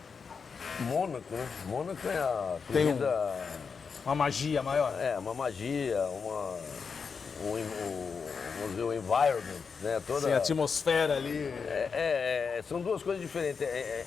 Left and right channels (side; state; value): right; quieter; 5.6 dB